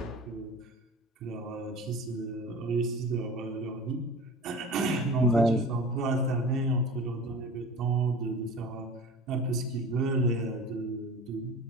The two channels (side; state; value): both; normal; correlation 0.37